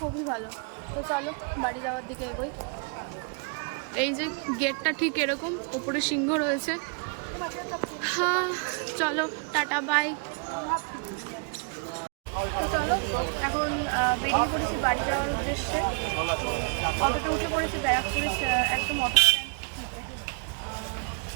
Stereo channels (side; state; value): left; quieter; 36.7 dB